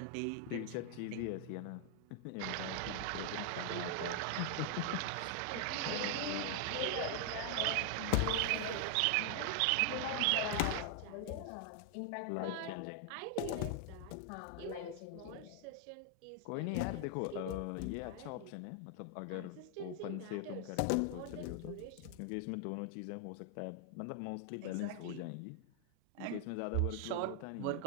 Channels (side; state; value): both; different; correlation 0.00